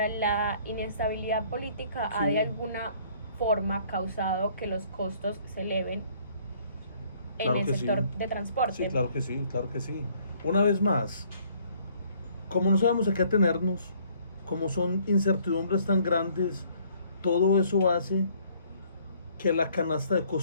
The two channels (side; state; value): both; inverted; correlation -0.61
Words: la inestabilidad política ha Sí. de alguna forma causado que los costos se eleven en Claro el que sector sí. de transporte. Sí, claro que sí, claro que sí. Una vez más, como no sabemos a qué atenernos, como son incertidumbres tan grandes, todo eso hace que la canasta de